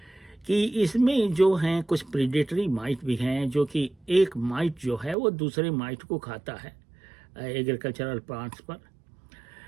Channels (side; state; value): left; drops out; at 5.2 s